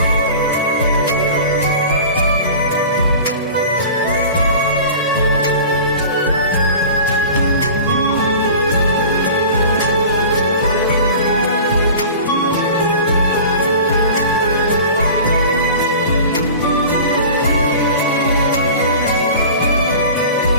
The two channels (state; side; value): inverted; both; correlation -0.38